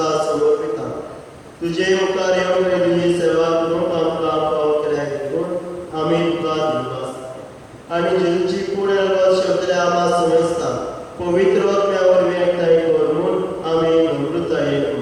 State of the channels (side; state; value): both; identical; correlation 1.00